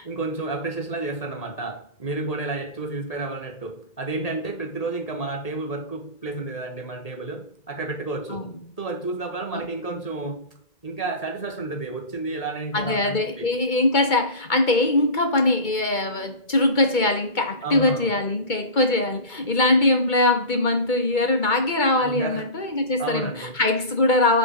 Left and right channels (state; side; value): late; right; 2.2 ms